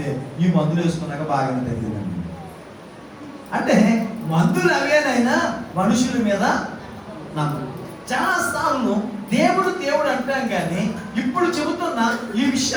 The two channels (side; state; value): both; identical; correlation 1.00